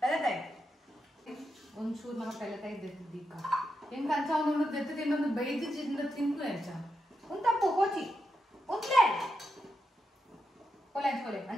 ಒಂಚೂರು ನಮ್ಮ ಪೆಲತಾಯಿ ದೆತ್ತಿದ್ದೀಕ ಹೆಂಗೆ ಅಂಚ ಒಂದು ದೆತ್ತು ತಿನ್ನೊಂದು ಬೈದು ತಿಂದು ಎಂಚ ಒಂದು ತಪ್ಪು ಕೋಚಿ ಒಂದ್ಲೇ ಕೊಲೆ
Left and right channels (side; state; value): both; normal; correlation 0.86